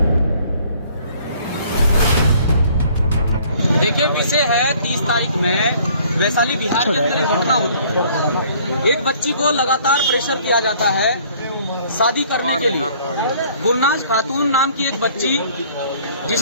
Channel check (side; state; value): both; inverted; correlation -0.57